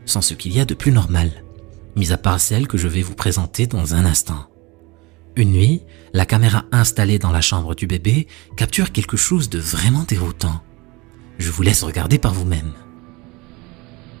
sont ce qu'il y a de plus normal, mis à part celle que je vais vous présenter dans un instant. Une nuit, la caméra installée dans la chambre du bébé capture quelque chose de vraiment déroutant. Je vous laisse regarder par vous-même.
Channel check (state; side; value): quieter; left; 24.0 dB